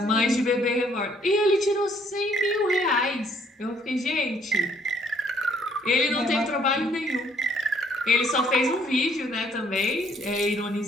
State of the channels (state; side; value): normal; both; correlation 0.65